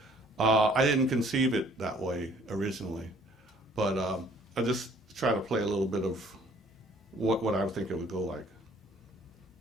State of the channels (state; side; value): normal; both; correlation 0.58